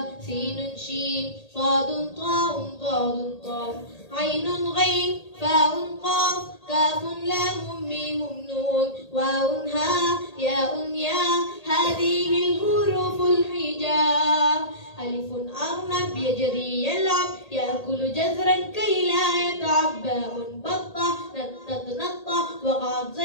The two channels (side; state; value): right; late; 1.8 ms